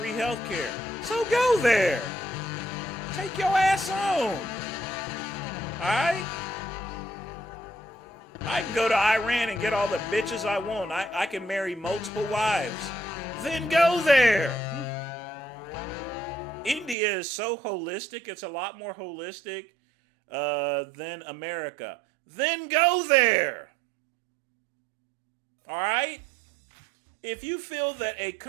health care. So go there. Take your ass on. Alright? I can go to Iran and get all the bitches I want. I can marry multiple wives. Then go there. India is so holistic. It's a lot more holistic than America. Then go there. All right? If you feel that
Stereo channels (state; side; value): drops out; left; at 16.9 s